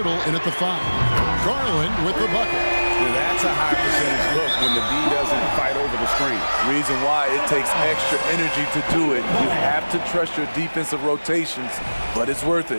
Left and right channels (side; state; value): both; inverted; correlation -1.00